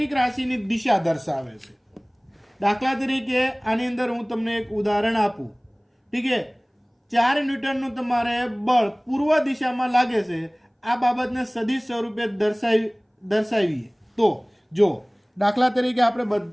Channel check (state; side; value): identical; both; correlation 1.00